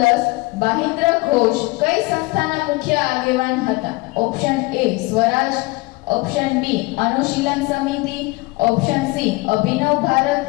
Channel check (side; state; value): right; quieter; 23.4 dB